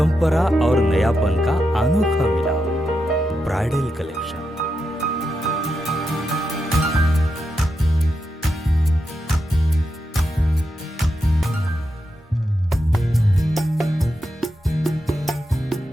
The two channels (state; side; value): normal; both; correlation 0.86